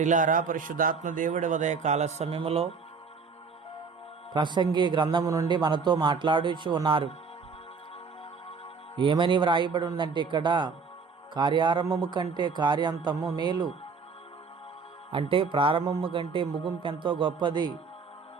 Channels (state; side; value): quieter; left; 5.2 dB